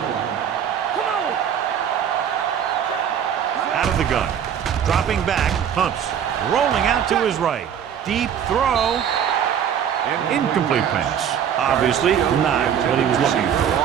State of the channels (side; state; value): left; quieter; 8.7 dB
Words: Out of the gun. Dropping back, pumps. Rolling out to his right. Deep throw. Incomplete pass. Obviously not what he was looking for.